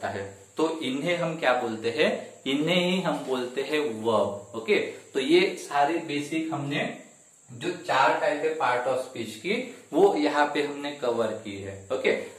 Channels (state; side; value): identical; both; correlation 1.00